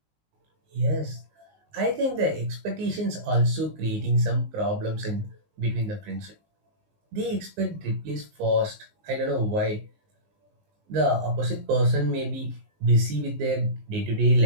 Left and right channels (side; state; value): left; late; 19 ms